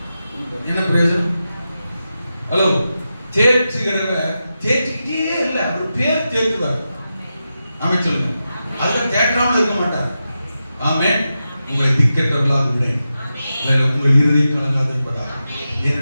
என்ன பிரயோஜனம்? ஹலோ, தேற்றுகிறவர் தேற்றிக்கிட்டே இல்லை, அவர் பேர் தேற்றுவார். ஆமென் சொல்லுங்க. அதுதான் தேற்றாமல் இருக்க மாட்டார். ஆமென். உங்களை திக்கற்றவர்களாக விடேன், உங்கள் இருதை கலங்காதிருப்பதாக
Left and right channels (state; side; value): inverted; both; correlation -0.90